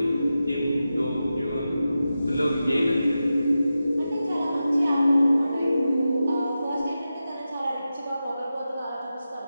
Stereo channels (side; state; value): both; inverted; correlation -0.92